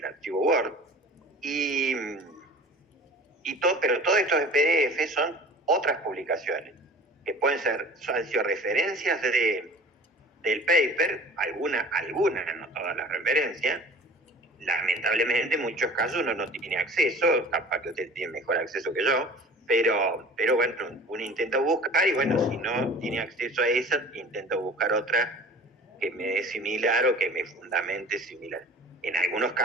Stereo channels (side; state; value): both; normal; correlation 0.43